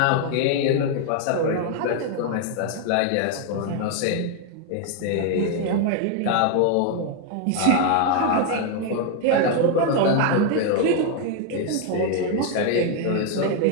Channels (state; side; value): different; both; correlation 0.00